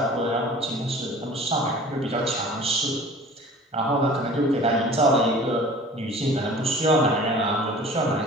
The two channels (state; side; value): normal; both; correlation 0.45